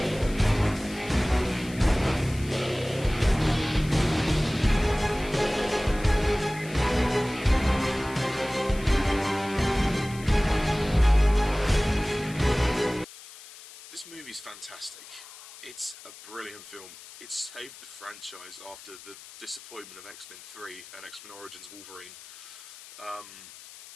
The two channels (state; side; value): noise; left; hiss, 17 dB below the sound